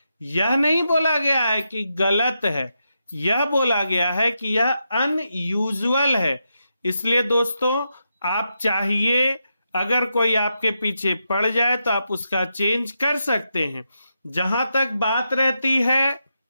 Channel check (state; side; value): inverted; both; correlation -0.85